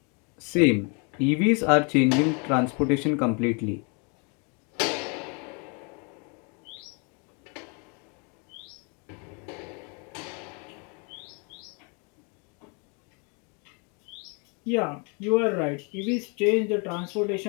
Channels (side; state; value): right; quieter; 34.6 dB